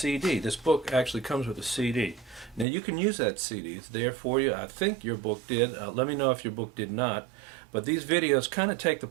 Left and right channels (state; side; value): drops out; left; at 2.7 s